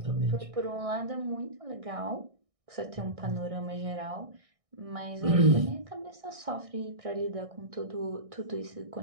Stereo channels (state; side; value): late; left; 1.6 ms